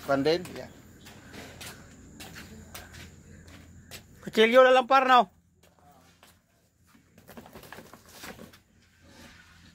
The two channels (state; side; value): identical; both; correlation 1.00